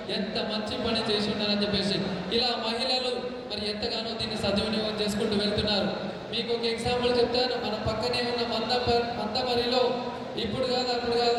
ఎంత మంచి పని చేసి ఉన్నారని చెప్పేసి. ఇలా మహిళలు మరి ఎంతగానో దీన్ని సద్వినియోగం చేసుకుంటూ వెళ్తున్నారు. మీకు ఒక ఎగ్జాంపుల్ చెప్తాను. మన పక్కనే ఉన్న మందమరిలో ఇప్పుడు కాదు అప్పుడు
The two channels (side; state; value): both; identical; correlation 1.00